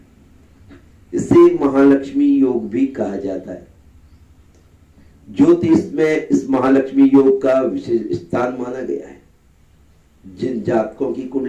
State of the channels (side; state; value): both; identical; correlation 1.00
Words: इसे महालक्ष्मी योग भी कहा जाता है। ज्योतिष में इस महालक्ष्मी योग का विशेष स्थान माना गया है। जिन जातकों की